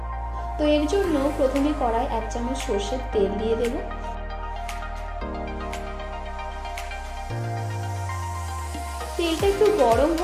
तो एर जोन्नो प्रथमे कड़ाई 1 चामच सर्षेर तेल दिए देब। तेलटा एकटु गरम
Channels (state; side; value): identical; both; correlation 1.00